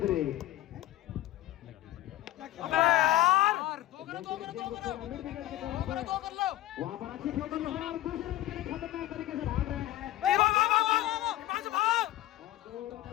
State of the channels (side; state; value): right; quieter; 14.9 dB